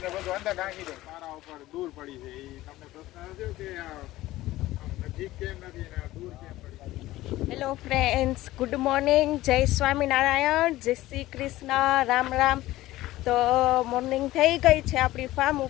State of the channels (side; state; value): right; quieter; 16.6 dB